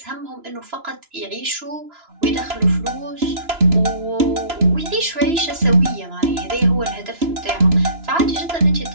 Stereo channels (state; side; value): late; left; 2.9 ms